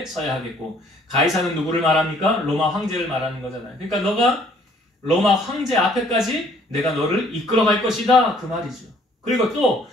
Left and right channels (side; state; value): both; normal; correlation 0.61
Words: 서야 하겠고, 가이사는 누구를 말합니까? 로마 황제를 말하는 거잖아요. 그러니까 너가 로마 황제 앞에까지 내가 너를 이끌어갈 것이다, 그 말이죠. 그리고 또